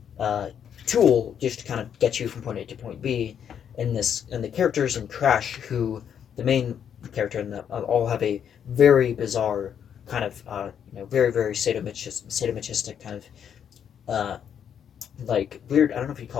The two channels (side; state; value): right; quieter; 8.5 dB